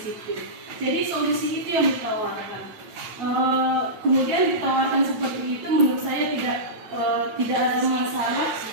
Jadi solusi itu yang ditawarkan. Kemudian ditawarkan seperti itu, menurut saya tidak ada masalah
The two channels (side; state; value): left; late; 9.0 ms